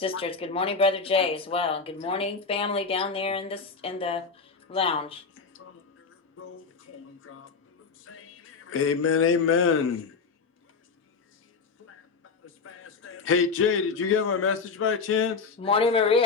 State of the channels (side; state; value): right; quieter; 4.9 dB